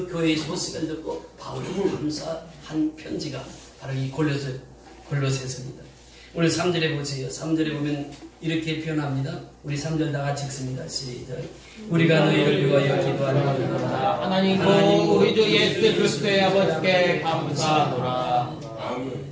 교회의 소식을 듣고 바울이 감사한 편지가 바로 이 골로새서입니다. 오늘 3절에 보세요. 3절에 보면 이렇게 표현합니다. 우리 3절 다 같이 읽습니다. 시작. 우리가 너희를 위하여 기도하노라. 하나님고 우리 주 예수 그리스도의 아버지께 감사하노라.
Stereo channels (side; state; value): both; identical; correlation 1.00